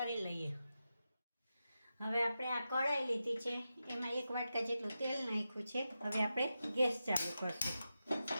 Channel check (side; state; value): both; inverted; correlation -0.90